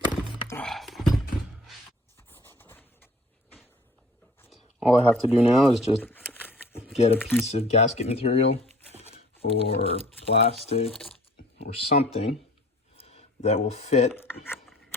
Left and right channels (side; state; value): both; normal; correlation 0.51